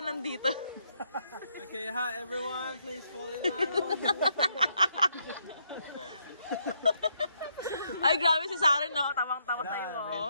nandito. Okay, hi everyone, please fall in line. Ay, grabe si Saren, no? Tamang-tama sa'yo,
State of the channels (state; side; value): inverted; both; correlation -0.75